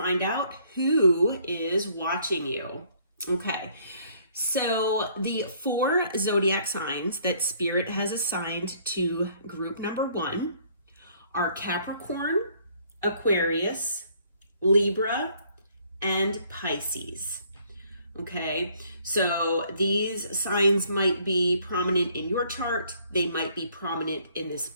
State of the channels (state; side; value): inverted; both; correlation -0.62